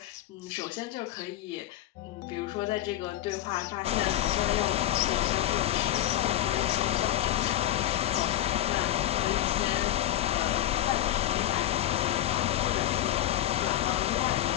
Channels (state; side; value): quieter; right; 13.0 dB